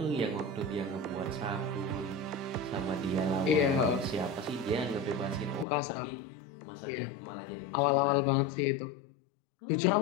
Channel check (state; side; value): drops out; right; at 5.7 s